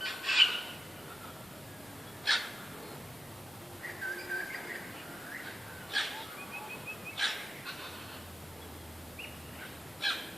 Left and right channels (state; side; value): normal; both; correlation 0.92